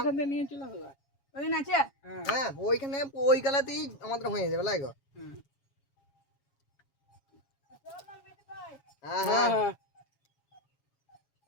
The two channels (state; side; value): late; right; 7.2 ms